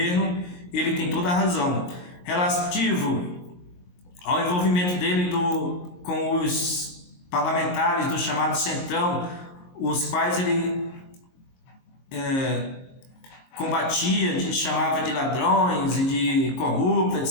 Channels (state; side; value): late; right; 22 ms